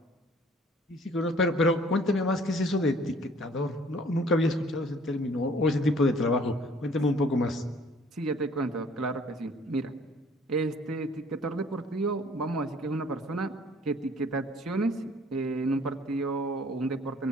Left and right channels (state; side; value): normal; both; correlation 0.55